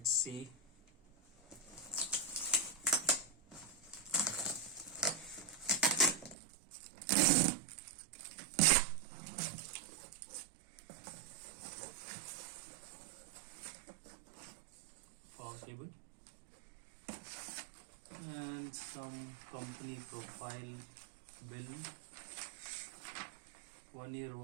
see. Power cable and some company profile bill, 1-year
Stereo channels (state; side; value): drops out; left; at 6.4 s